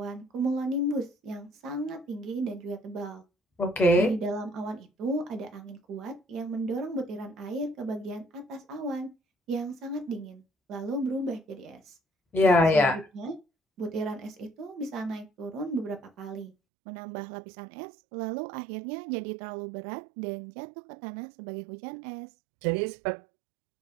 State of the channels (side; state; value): left; drops out; at 16.5 s